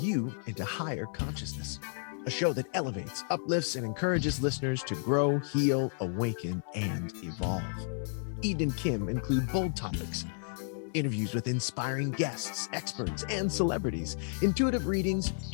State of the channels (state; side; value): silent; right; digital silence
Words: into higher consciousness. A show that elevates, uplifts, and encourages listeners to grow, heal, awaken, and evolve. Eden and Kim include bold topics, interviews with inspiring guests, experts, and celebrities, intuitive readings,